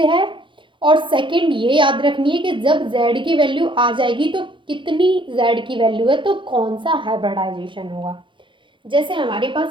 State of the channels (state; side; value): late; left; 0.24 ms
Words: है, और सेकंड ये याद रखनी है कि जब z की वैल्यू आ जाएगी तो कितनी z की वैल्यू है, तो कौन सा हाइब्रिडाइजेशन होगा। जैसे हमारे